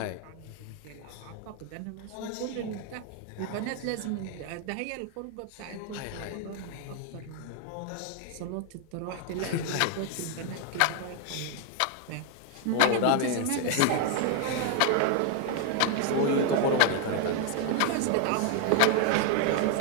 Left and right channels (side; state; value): both; different; correlation 0.01